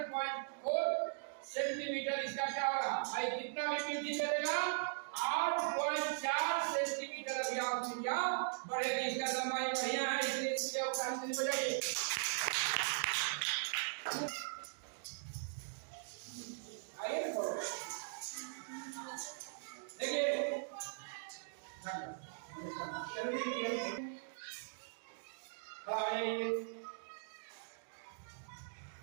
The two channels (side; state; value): left; silent; digital silence